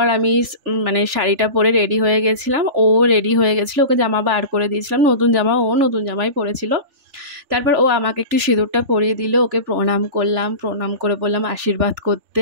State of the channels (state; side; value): late; left; 3.4 ms